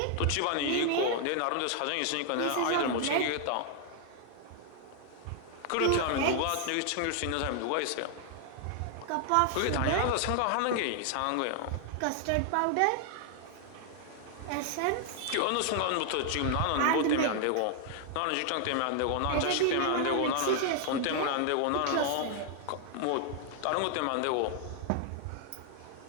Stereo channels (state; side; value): different; both; correlation 0.00